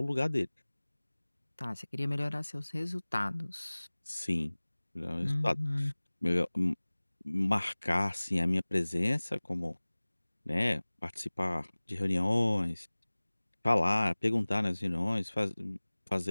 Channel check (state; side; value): inverted; both; correlation -1.00